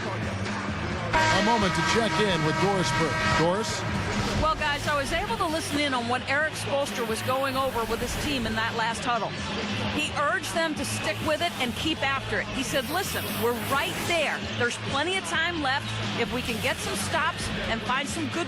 A moment to check in with Doris Burke. Doris? Well, guys, I was able to listen in on what Eric Spoelstra was going over with his team in that last huddle. He urged them to stick with it and keep after it. He said, listen, we're right there. There's plenty of time left. If we can get some stops and find some good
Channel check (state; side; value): identical; both; correlation 1.00